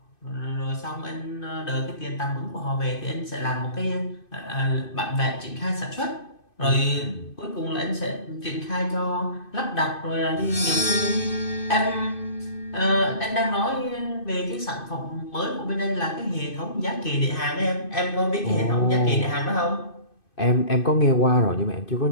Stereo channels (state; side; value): late; right; 2.5 ms